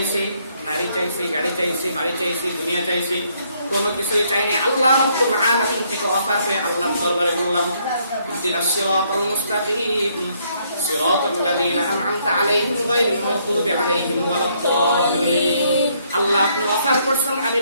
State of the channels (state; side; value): inverted; both; correlation -0.70